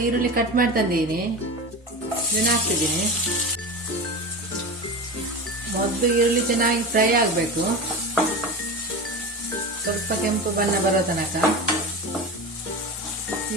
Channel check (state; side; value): normal; both; correlation 0.27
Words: ಈರುಳ್ಳಿ ಕಟ್ ಮಾಡಿ ತಂದಿದ್ದೀನಿ. ಇದನ್ನು ಹಾಕ್ತಿದ್ದೀನಿ. ಮೊದಲು ಈರುಳ್ಳಿ ಚೆನ್ನಾಗಿ ಫ್ರೈ ಆಗಬೇಕು. ಸ್ವಲ್ಪ ಕೆಂಪು ಬಣ್ಣ ಬರೋ ತನಕ.